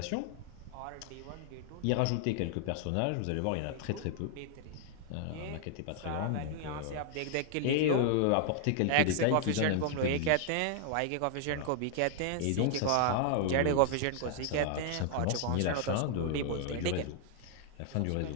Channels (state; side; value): different; both; correlation 0.00